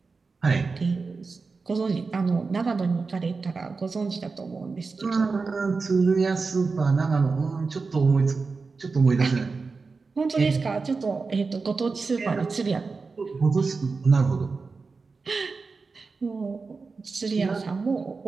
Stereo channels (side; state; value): left; quieter; 4.4 dB